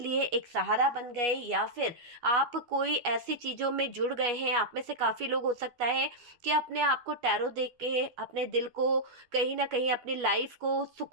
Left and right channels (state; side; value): late; left; 12 ms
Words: एक सहारा बन गए, या फिर आप कोई ऐसी चीज़ों में जुड़ गए हैं। आप में से काफ़ी लोग हो सकता है कि अपने आप को टैरो देख के अपने दिल को, कहीं ना कहीं अपनी लाइफ को